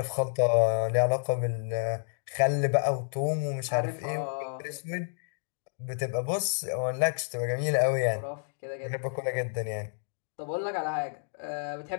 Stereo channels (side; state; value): right; silent; digital silence